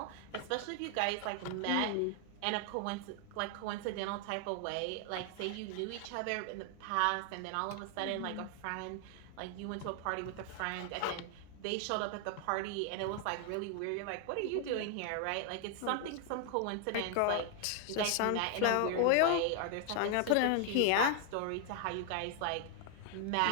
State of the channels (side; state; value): both; different; correlation 0.00